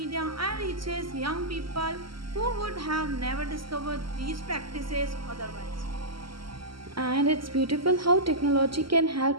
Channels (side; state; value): left; late; 0.74 ms